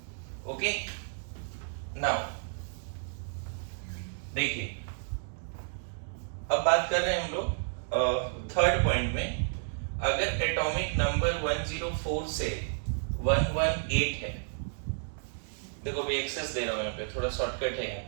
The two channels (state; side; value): silent; left; digital silence